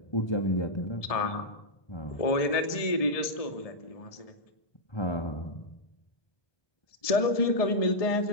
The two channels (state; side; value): late; right; 1.7 ms